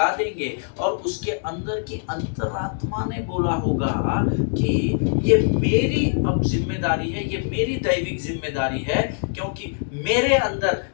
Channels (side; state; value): right; silent; digital silence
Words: देंगे, और उसके अंदर की अंतरात्मा ने बोला होगा कि ये मेरी अब जिम्मेदारी है, ये मेरी दैविक जिम्मेदारी है, क्योंकि मेरे अंदर